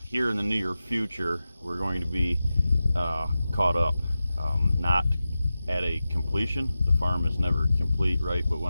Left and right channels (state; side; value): inverted; both; correlation -0.94